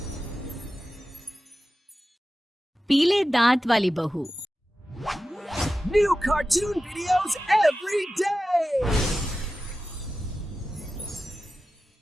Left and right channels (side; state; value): both; normal; correlation 0.94